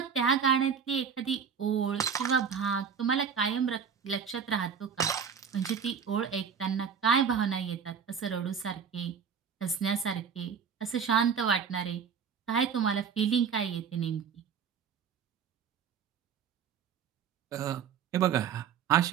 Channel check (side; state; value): left; quieter; 6.8 dB